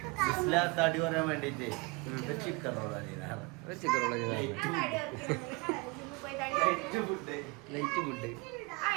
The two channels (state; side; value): quieter; left; 26.8 dB